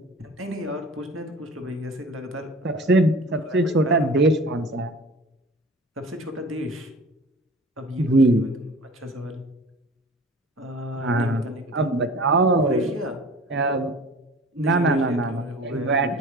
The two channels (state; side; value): normal; both; correlation 0.42